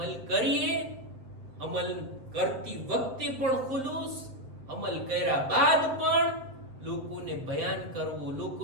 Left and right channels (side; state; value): left; late; 7.7 ms